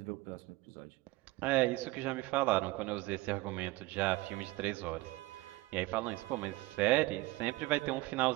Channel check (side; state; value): left; quieter; 20.1 dB